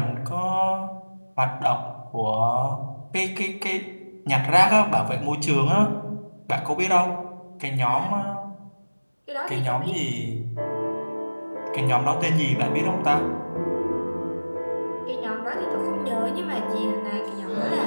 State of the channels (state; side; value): inverted; both; correlation -1.00